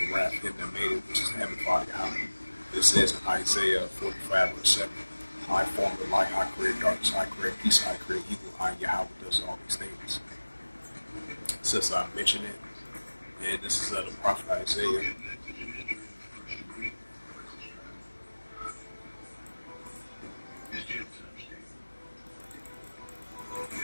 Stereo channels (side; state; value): both; inverted; correlation -1.00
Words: wrath of him that made it, which is the Heavenly Father Yahweh. It says in Isaiah 45, verse 7, "I form the light, I create darkness, I create peace, I create evil, I Yahweh does all these things." Since I mentioned it, and this is the prophet Isaiah.